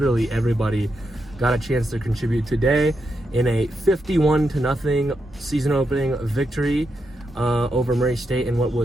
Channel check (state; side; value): normal; both; correlation 0.84